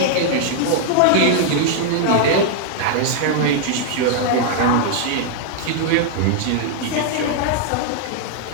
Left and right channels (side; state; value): both; different; correlation -0.01